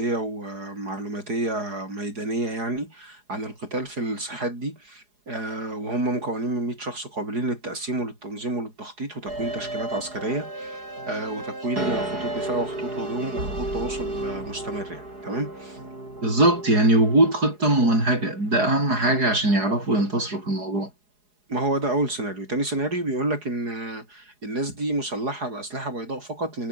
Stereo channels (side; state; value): left; late; 4.8 ms